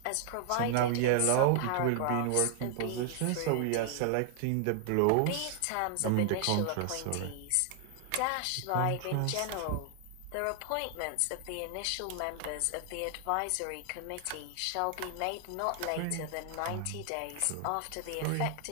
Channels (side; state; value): both; different; correlation 0.00